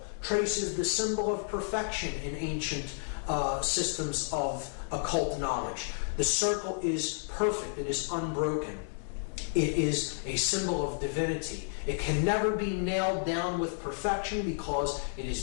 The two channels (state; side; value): silent; right; digital silence